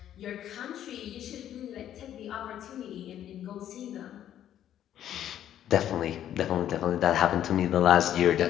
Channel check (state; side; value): quieter; right; 11.0 dB